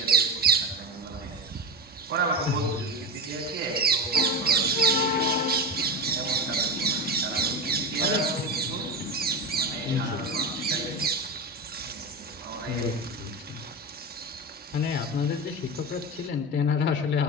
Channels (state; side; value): normal; both; correlation 0.20